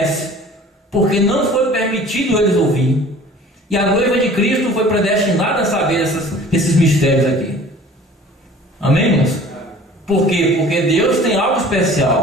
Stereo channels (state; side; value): normal; both; correlation 0.47